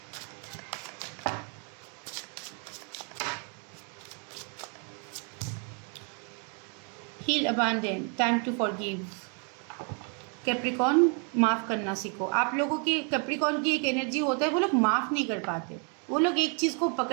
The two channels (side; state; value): left; quieter; 38.2 dB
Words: heal, abandon, time to forgive. Capricorn, माफ़ करना सीखो। आप लोगों की कैप्रिकॉर्न की एक एनर्जी होता है, वो लोग माफ़ नहीं कर पाते, वो लोग एक चीज़ को